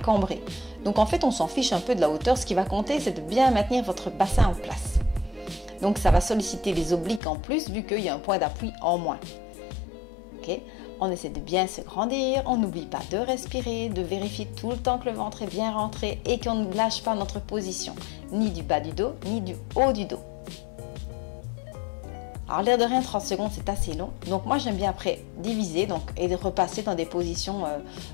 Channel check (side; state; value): right; drops out; at 7.2 s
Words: Donc en fait, on s'en fiche un peu de la hauteur. Ce qui va compter, c'est de bien maintenir votre bassin en place. Donc ça va solliciter les obliques en plus vu qu'il y a un point d'appui en moins. Ok, on essaie de bien se grandir, on n'oublie pas de respirer, de vérifier tout le temps que le ventre est bien rentré et qu'on ne lâche pas notre position, ni du bas du dos, ni du haut du dos. Alors l'air de rien, 30 secondes c'est assez long, donc moi j'aime bien après diviser et de repasser dans des positions